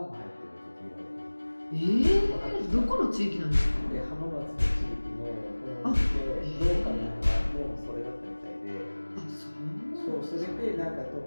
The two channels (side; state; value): both; inverted; correlation -1.00